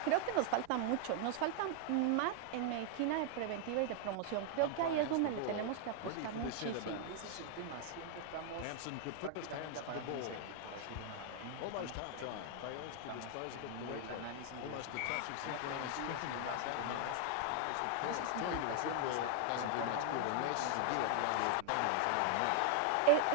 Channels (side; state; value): both; different; correlation 0.00